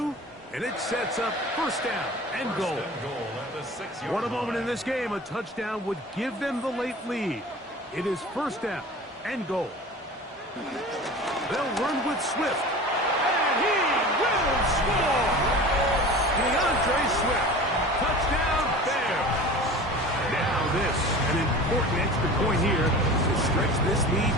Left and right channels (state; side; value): normal; both; correlation 0.38